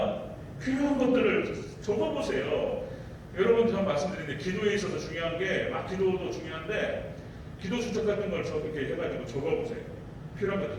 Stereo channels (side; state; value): both; identical; correlation 1.00